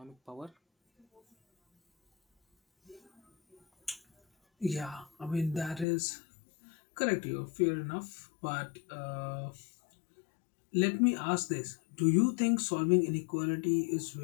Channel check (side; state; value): right; drops out; at 5.9 s